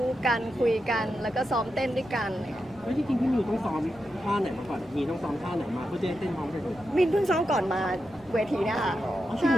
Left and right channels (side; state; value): right; noise; rumble, 24 dB below the sound